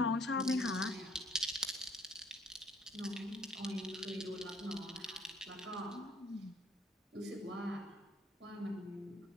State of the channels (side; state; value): both; normal; correlation 0.60